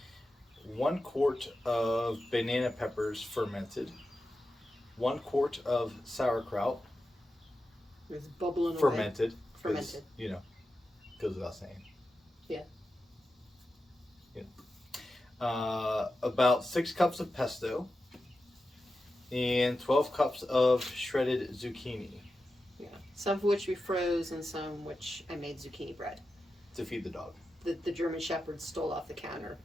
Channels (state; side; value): normal; both; correlation 0.91